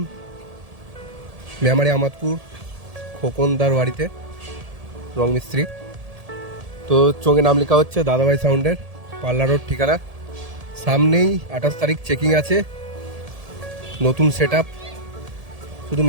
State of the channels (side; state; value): left; late; 1.7 ms